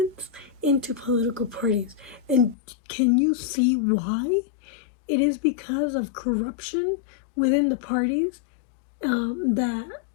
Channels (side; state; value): right; drops out; at 2.6 s